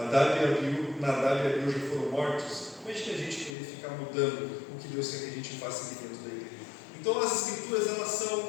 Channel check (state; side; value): drops out; right; at 3.6 s